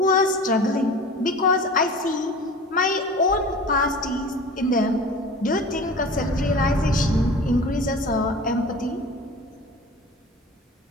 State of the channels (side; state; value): both; normal; correlation 0.38